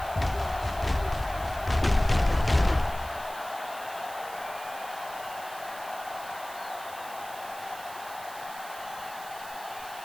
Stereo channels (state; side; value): noise; right; hiss, 15 dB below the sound